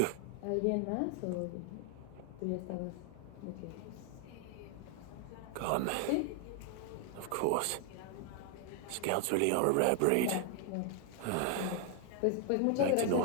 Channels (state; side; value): different; both; correlation 0.00